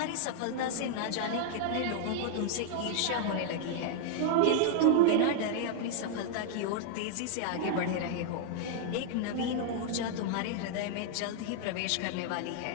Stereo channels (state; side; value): different; both; correlation 0.00